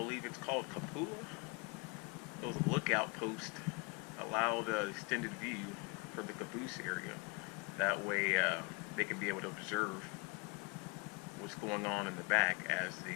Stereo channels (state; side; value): quieter; right; 28.6 dB